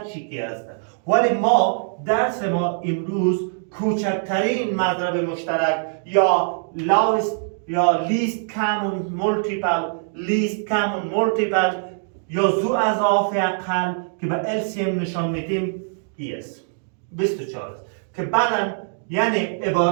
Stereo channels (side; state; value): left; silent; digital silence